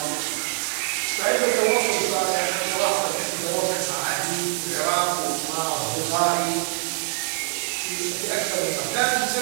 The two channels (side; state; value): left; silent; digital silence